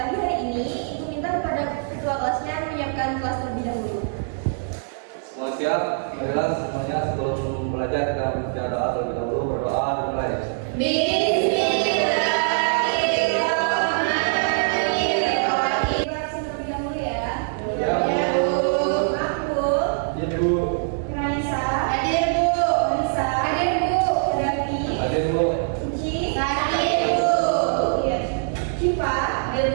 hari ini, Ibu minta kepada ketua kelasnya menyiapkan kelas terlebih dahulu. Semua siap? Marilah semuanya sebelum belajar kita membaca doa terlebih dahulu. Berdoa dimulai.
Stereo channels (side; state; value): left; silent; 59 dB below the other